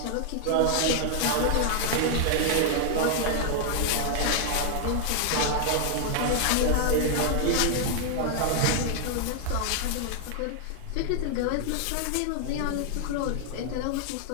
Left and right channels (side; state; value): both; different; correlation 0.00